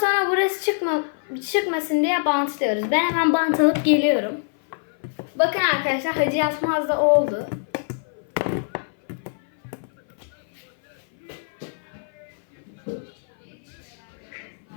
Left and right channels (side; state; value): right; silent; 58 dB below the other